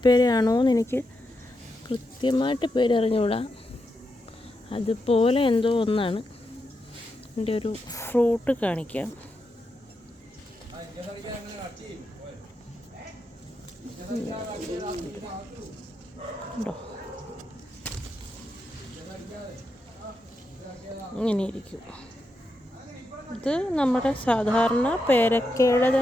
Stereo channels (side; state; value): both; normal; correlation 0.85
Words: എന്ന് എനിക്ക് കൃത്യമായിട്ട് പേരറിഞ്ഞുകൂടാ. അതുപോലെ എന്തോ ഒന്നാണ്. എൻ്റെ ഒരു ഫ്രൂട്ട് കാണിക്കാം. ഉണ്ടോ, ഇങ്ങനെ ഇരിക്കും. ഇത് നമ്മുടെ സാധാരണ പേരക്കയുടെ